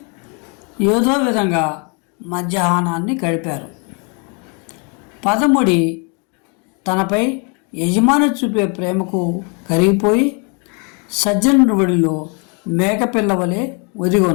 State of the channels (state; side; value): quieter; right; 35.2 dB